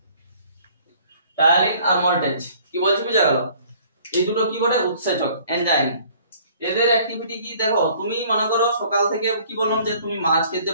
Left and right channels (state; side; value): inverted; both; correlation -0.56